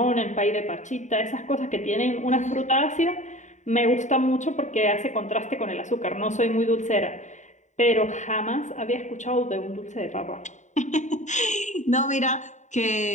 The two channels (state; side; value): late; right; 0.35 ms